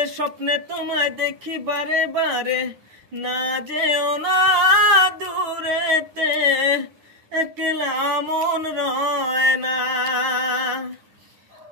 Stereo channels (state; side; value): late; left; 10 ms